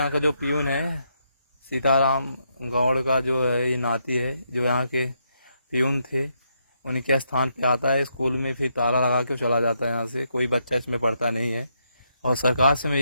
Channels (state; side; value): inverted; both; correlation -0.78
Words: का जो प्यून है, सीताराम गौड़ का जो है, ये नाती है, जो यहाँ के प्यून थे, उनके स्थान पे आता है स्कूल में, फिर ताला लगा के चला जाता है यहाँ से। कोई बच्चा इसमें पढ़ता नहीं है। और सरकार से मैं